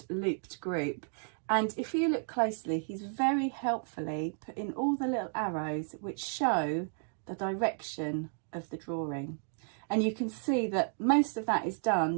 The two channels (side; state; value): left; silent; 56 dB below the other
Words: Looped Group. And if you look closely, he's very helpfully put in all the little arrows which show the direction of the drawing. And you can see that most of that is